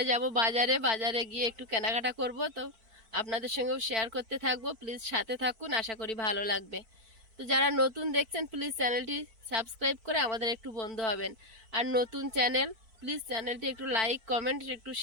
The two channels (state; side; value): late; left; 4.5 ms